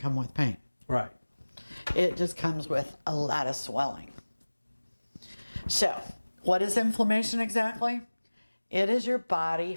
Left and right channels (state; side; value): inverted; both; correlation -1.00